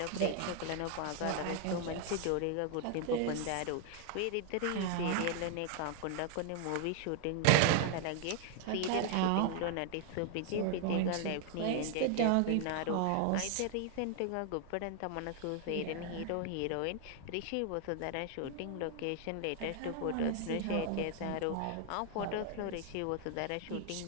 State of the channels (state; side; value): different; both; correlation 0.00